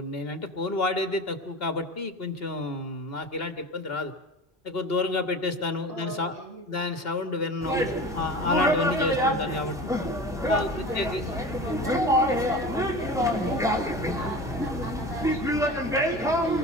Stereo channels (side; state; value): both; normal; correlation 0.34